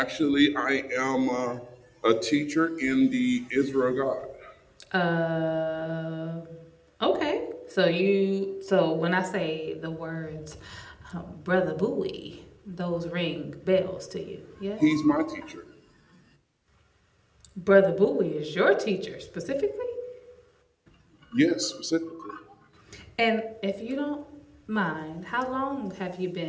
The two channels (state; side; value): identical; both; correlation 1.00